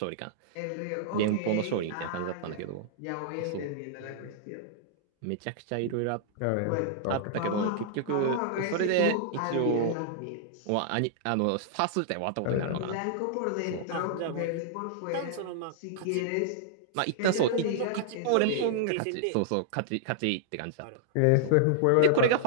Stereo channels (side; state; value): both; different; correlation -0.01